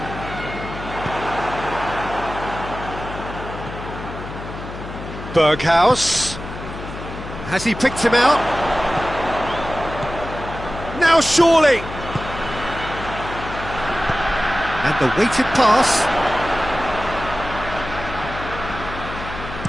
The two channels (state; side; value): noise; left; hum, 10 dB below the sound